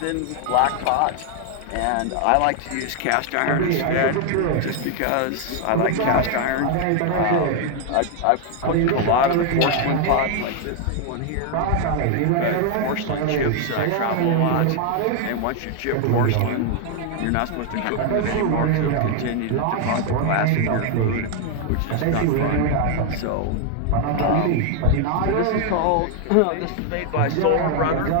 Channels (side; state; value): both; different; correlation 0.00